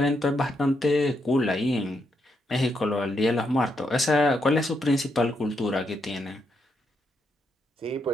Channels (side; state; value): both; normal; correlation 0.80